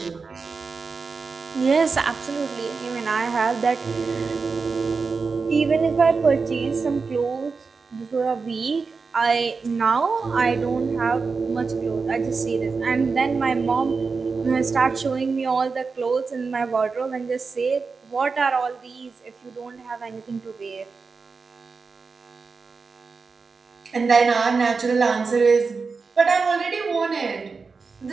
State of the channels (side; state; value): left; quieter; 4.7 dB